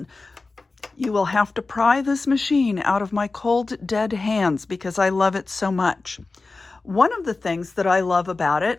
You will have to pry this machine out of my cold, dead hands because I love it so much. One of the things that I love about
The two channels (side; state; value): right; quieter; 3.7 dB